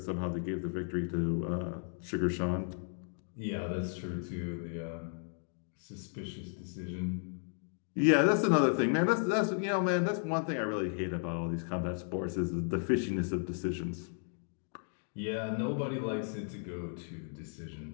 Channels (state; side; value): silent; right; 55 dB below the other